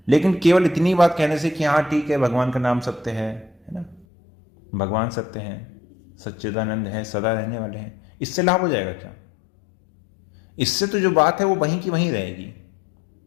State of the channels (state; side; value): drops out; right; at 4.0 s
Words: लेकिन केवल इतनी बात कहने से कि हाँ ठीक है भगवान का नाम सत्य है ना, भगवान सत्य है, सच्चिदानंद है, सदा रहने वाले हैं, इससे लाभ हो जाएगा क्या? इससे तो जो बात है वो वहीं की वहीं रहेगी।